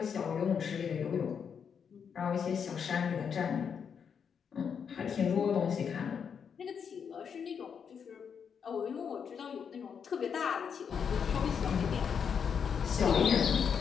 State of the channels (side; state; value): right; quieter; 7.0 dB